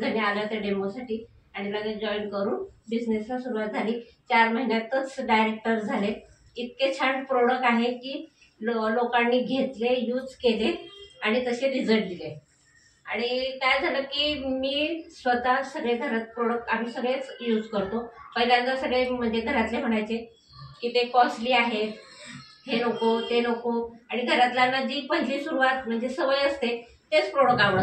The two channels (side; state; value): both; identical; correlation 1.00